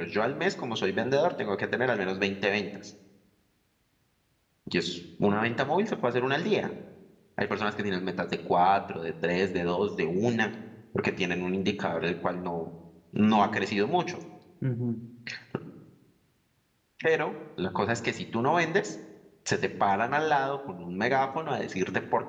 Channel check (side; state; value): both; identical; correlation 1.00